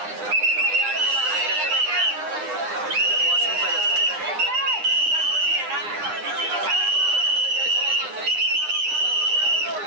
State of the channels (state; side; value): late; left; 9.8 ms